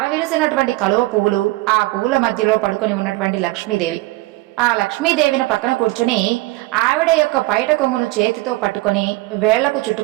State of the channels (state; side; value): quieter; left; 20.3 dB